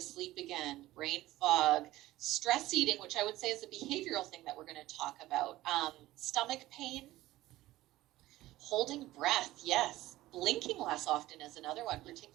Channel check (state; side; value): quieter; left; 16.5 dB